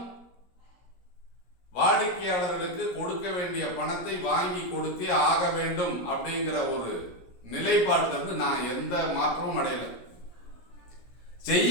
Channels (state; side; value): late; right; 17 ms